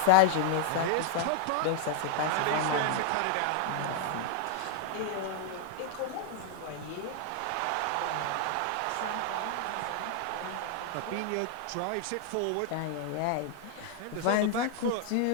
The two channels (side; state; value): both; different; correlation 0.00